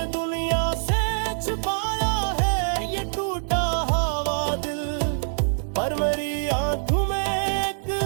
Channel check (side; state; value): left; silent; digital silence